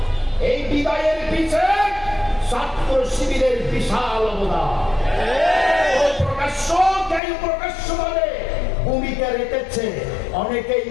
এই বিদায়ের পিছে ছাত্র শিবিরের বিশাল অবদান। প্রকাশ্যভাবে ভূমিকা রেখেছে। অনেকেই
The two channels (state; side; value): drops out; right; at 7.2 s